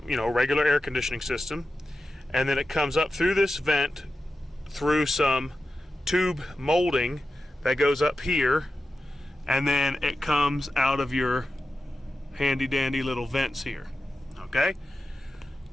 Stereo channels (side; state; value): both; normal; correlation 0.92